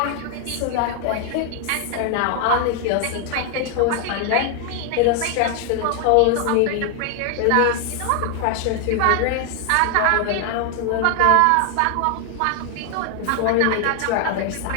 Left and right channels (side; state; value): both; different; correlation 0.01